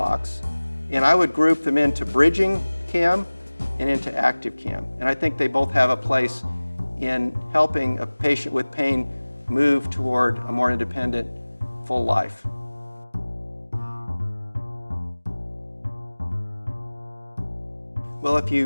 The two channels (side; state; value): both; inverted; correlation -1.00